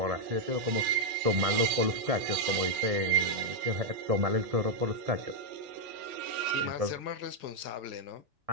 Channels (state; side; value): late; left; 1.8 ms